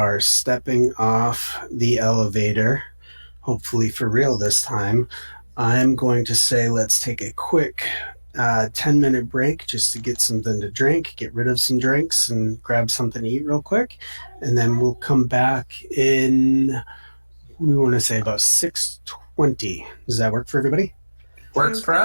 stepping off the elevator, hopefully for real this time, I'm going to say let's take a quick 10-minute break just to get something to drink, get rid of some drinks, and grab something to eat real quick. And then we'll come back in, we want to say about 6:20. Does that work for everybody? Works for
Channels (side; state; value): both; inverted; correlation -1.00